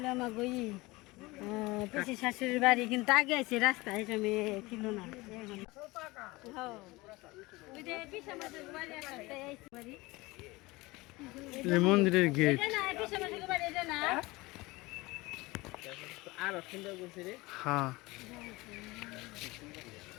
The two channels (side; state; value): right; quieter; 21.8 dB